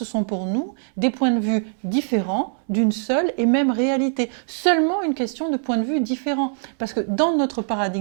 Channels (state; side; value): silent; left; 64 dB below the other